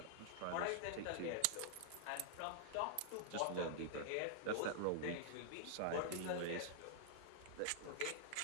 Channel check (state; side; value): different; both; correlation -0.01